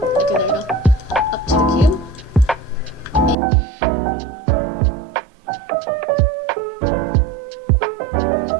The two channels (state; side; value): drops out; left; at 3.4 s